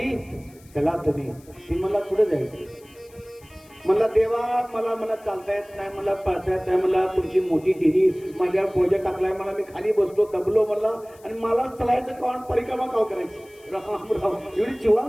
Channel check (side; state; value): left; noise; hiss, 27 dB below the sound